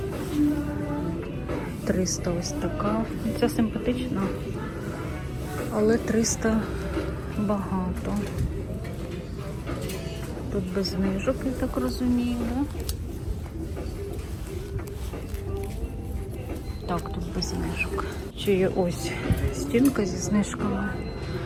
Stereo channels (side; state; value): both; identical; correlation 1.00